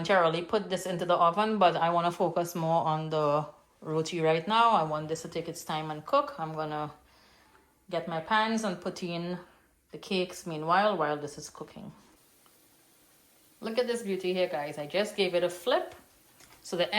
put this into the oven, but I want to focus more on the roti right now. I want this to take its time and cook. I'm gonna get my pans and put in the cakes meanwhile while this is cooking. Look at this beauty here, guys. I just gave it a flip. So the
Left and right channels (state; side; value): identical; both; correlation 1.00